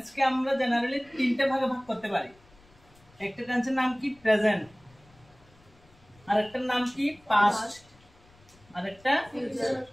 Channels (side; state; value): left; noise; rumble, 28 dB below the sound